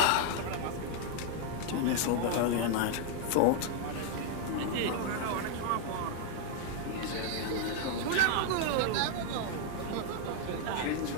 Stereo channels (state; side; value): different; both; correlation 0.00